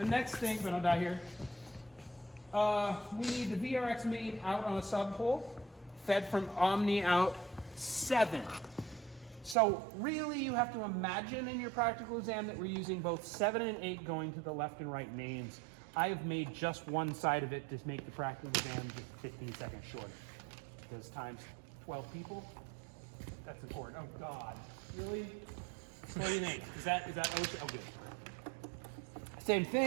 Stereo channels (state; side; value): drops out; left; at 9.6 s